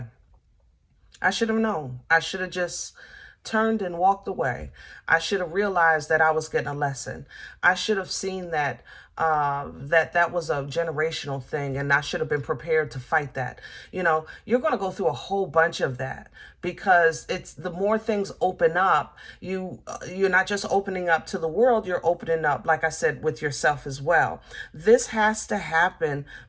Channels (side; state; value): both; identical; correlation 1.00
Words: I should have known. I should have just turned and walked away. I should have realized that I was getting a lesson. I should have seen that that was a generational thing, and I should have been prepared to fight that. You know, you're going to go through a whole bunch of that because it's the more things open up, you're not just opening up to the world, you're opening up, like I said, with yourself as well. This has to happen